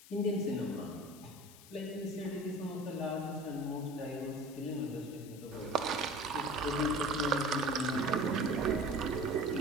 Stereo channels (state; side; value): noise; left; hiss, 19 dB below the sound